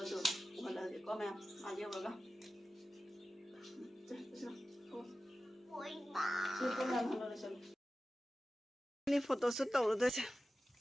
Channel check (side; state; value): both; normal; correlation 0.94